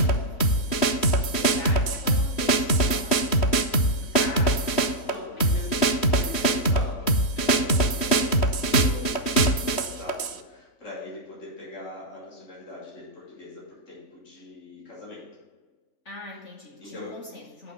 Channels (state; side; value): late; right; 3.1 ms